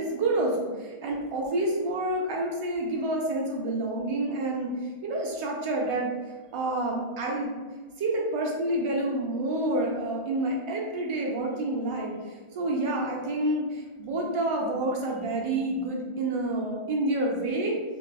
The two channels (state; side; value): late; right; 1.4 ms